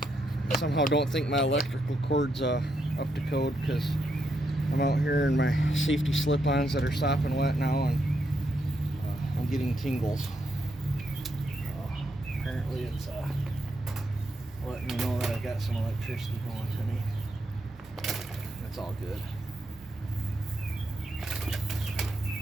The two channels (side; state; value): both; normal; correlation 0.80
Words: Somehow don't think my electrical cord's up to code because I'm out here in my safety slip-ons that are sopping wet now, and I'm getting tingles. Apparently it's letting me know that I got some electricity going to me. That's all good.